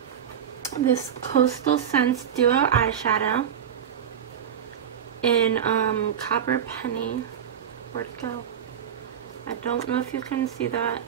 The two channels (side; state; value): left; quieter; 8.8 dB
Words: this Coastal Scents Duo eyeshadow in Copper Penny. Where'd it go? I don't know if you can see that.